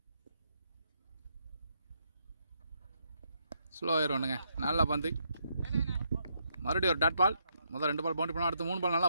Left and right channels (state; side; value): inverted; both; correlation -0.76